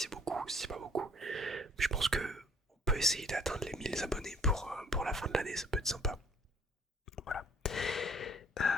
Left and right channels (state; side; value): normal; both; correlation 0.59